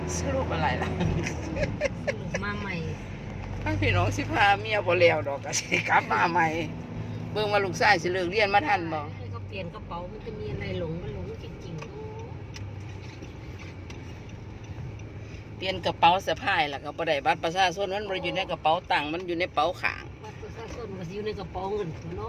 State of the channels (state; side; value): identical; both; correlation 1.00